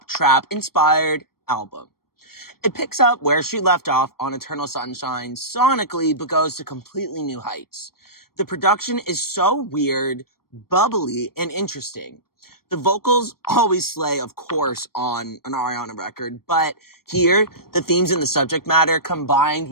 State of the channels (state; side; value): late; right; 0.94 ms